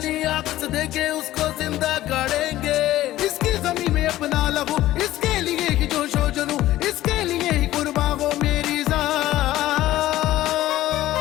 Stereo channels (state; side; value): quieter; right; 15.0 dB